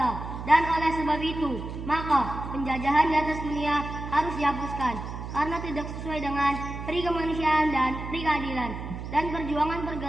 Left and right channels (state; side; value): noise; right; hum, 8 dB below the sound